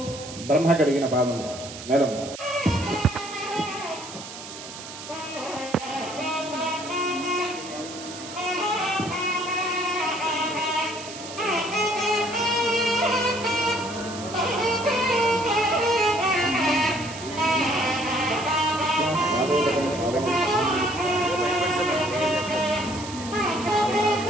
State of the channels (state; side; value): noise; right; hiss, 12 dB below the sound